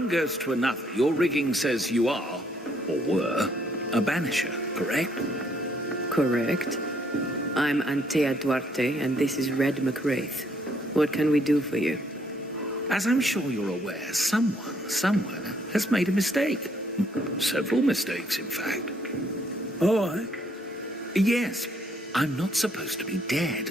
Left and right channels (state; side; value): normal; both; correlation 0.68